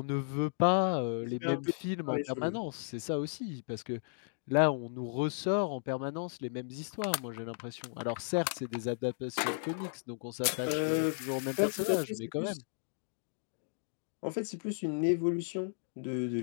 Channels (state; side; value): silent; right; digital silence